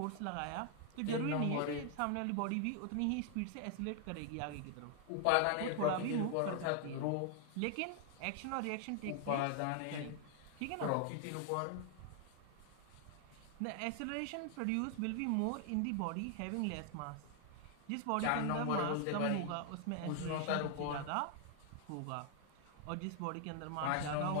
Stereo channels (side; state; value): both; different; correlation 0.00